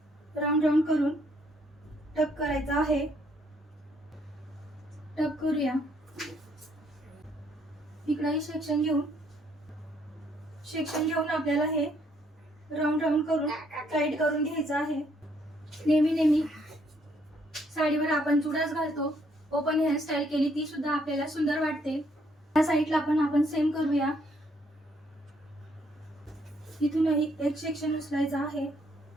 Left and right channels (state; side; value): normal; both; correlation 0.69